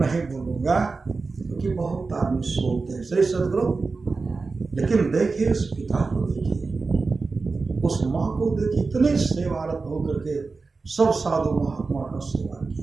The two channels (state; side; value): quieter; left; 4.1 dB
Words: बोलूंगा क्योंकि बहुत आदमी सोते हैं। श्री सतगुरु, लेकिन देखिए उस पिता को, देखिए उस माँ को, देखिए इतने सेवारत होकर के सब साधु महात्मा का सेवा